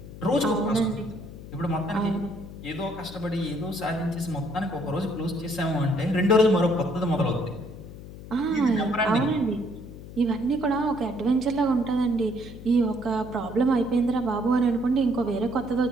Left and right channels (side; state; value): left; noise; hum, 14 dB below the sound